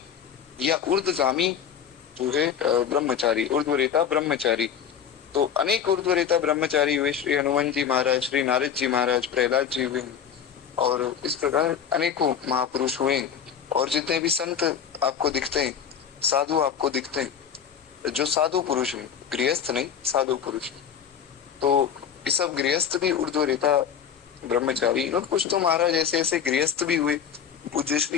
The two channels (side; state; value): right; quieter; 8.0 dB